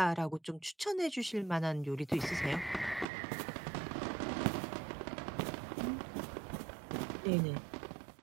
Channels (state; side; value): drops out; left; at 3.1 s